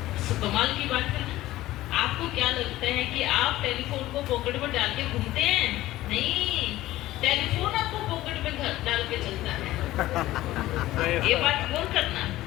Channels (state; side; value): quieter; right; 16.0 dB